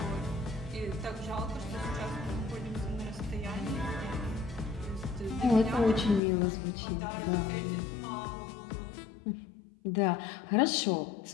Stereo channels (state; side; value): drops out; right; at 6.2 s